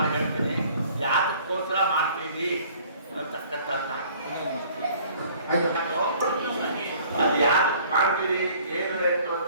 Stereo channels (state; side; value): inverted; both; correlation -0.54